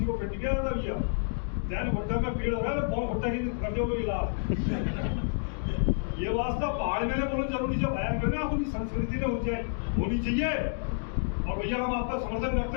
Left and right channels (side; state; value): right; silent; digital silence